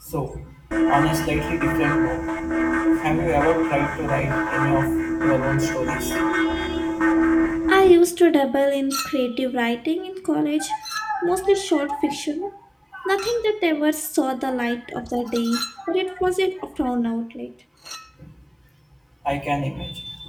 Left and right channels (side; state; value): both; identical; correlation 1.00